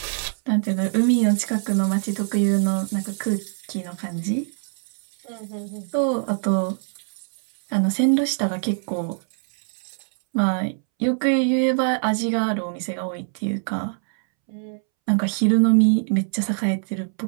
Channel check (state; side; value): silent; left; 63 dB below the other